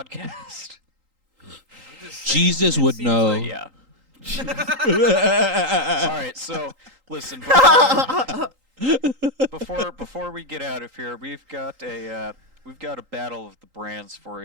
I'm just saying, Jesus it would seems know. like- Yeah. All right, so listen. Before we get out of here, we've got a battle of the brands for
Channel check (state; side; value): late; left; 3.8 ms